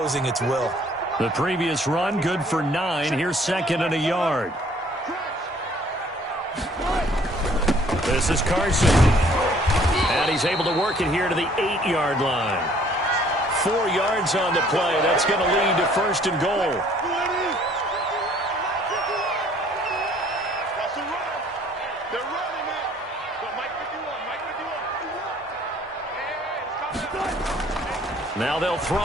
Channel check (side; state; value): both; normal; correlation 0.58